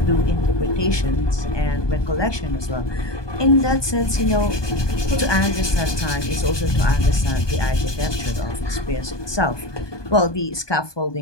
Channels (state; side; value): late; right; 1.2 ms